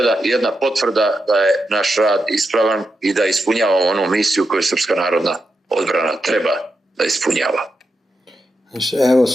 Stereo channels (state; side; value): normal; both; correlation 0.86